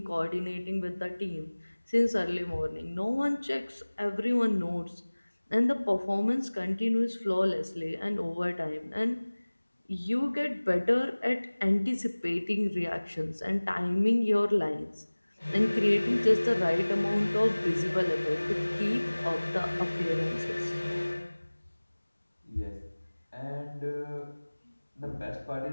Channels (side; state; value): both; inverted; correlation -1.00